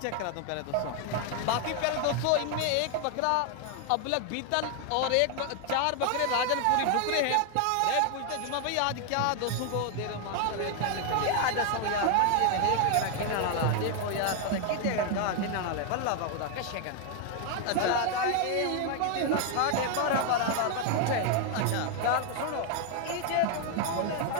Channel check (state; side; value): different; both; correlation 0.00